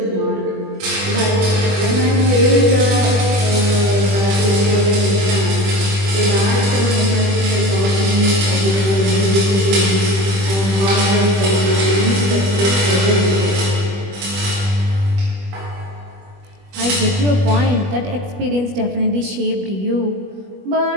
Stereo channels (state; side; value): late; left; 21 ms